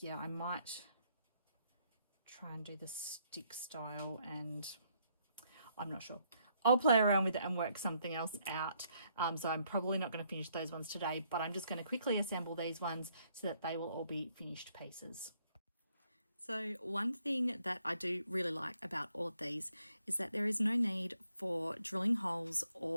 yeah, I might try and do the stick style, and I'm not sure. I'll play around with it and work something else out. So I'm probably not going to finish those ones today, but I'm just going to quickly assemble these ones so that they will all be finished pieces. So one thing that I do really like about all of these is that there is no need for drilling holes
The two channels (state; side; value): inverted; both; correlation -0.72